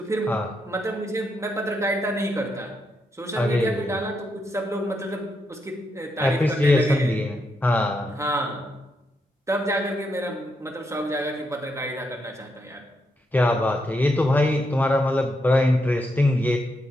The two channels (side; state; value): both; normal; correlation 0.81